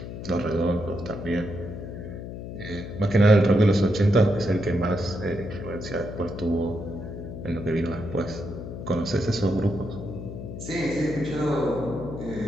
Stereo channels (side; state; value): left; noise; hum, 9 dB below the sound